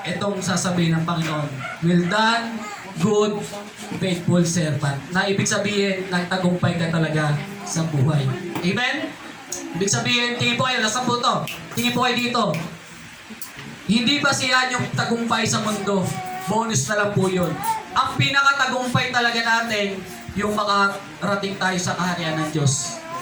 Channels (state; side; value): identical; both; correlation 1.00